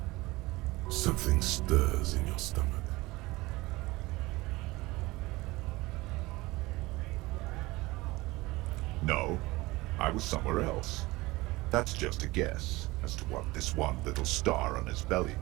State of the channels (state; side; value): quieter; left; 20.9 dB